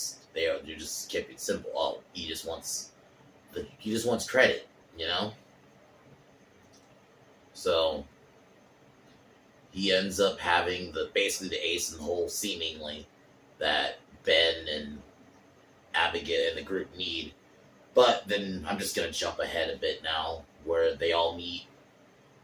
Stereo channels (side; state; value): both; identical; correlation 1.00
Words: keep it simple. Oh, he just wants credit, So he ends up having basically the ace in the hole, seemingly, that Ben and Abigail and the group need. But then I'm just gonna jump ahead a bit now, where they all meet.